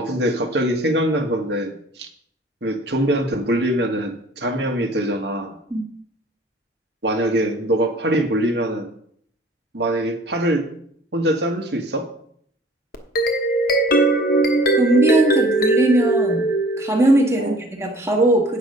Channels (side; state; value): both; normal; correlation 0.50